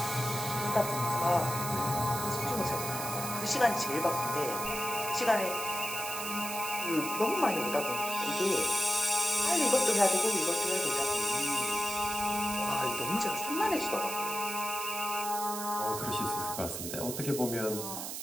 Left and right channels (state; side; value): noise; right; hiss, 6 dB below the sound